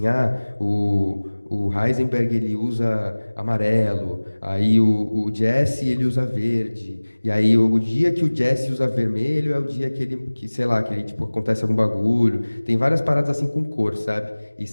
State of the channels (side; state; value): both; inverted; correlation -1.00